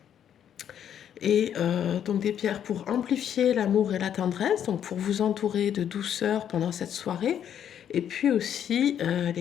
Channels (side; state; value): right; quieter; 9.4 dB